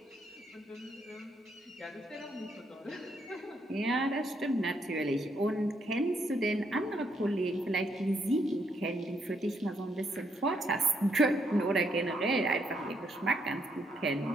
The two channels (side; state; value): both; normal; correlation 0.75